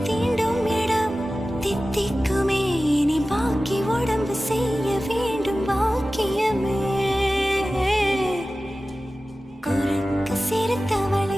தீண்டும் இடம் தித்திக்குமே, நீ பாக்கி உடம்பு செய்ய வேண்டும் பாக்கியமே. குறுக்கு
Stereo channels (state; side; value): normal; both; correlation 0.96